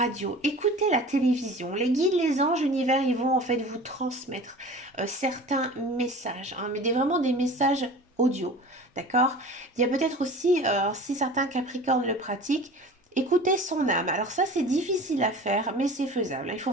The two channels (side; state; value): both; normal; correlation 0.39